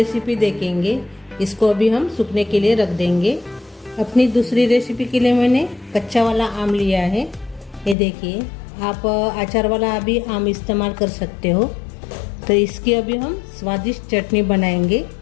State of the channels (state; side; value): drops out; right; at 8.0 s